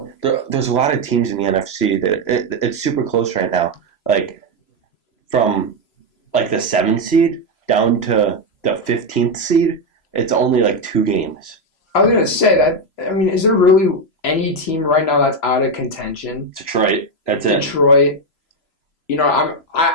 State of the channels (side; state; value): right; late; 3.0 ms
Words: a lot of teams in the NFC that it's super close right now. Like, from, the 7th seed down to the 15th seed, it's only, 2 games. I was going to say that, I mean, is there really any team right now that's out of contention? Detroit. That's it. Detroit. You know,